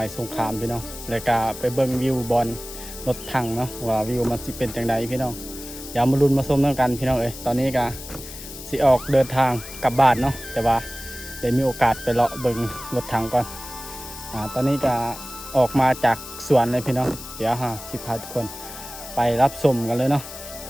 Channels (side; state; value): left; noise; hiss, 13 dB below the sound